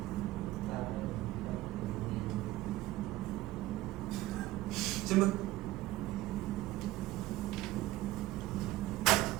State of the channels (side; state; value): left; quieter; 17.2 dB